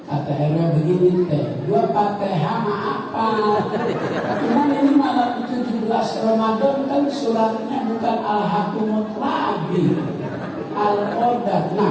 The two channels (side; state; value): both; identical; correlation 1.00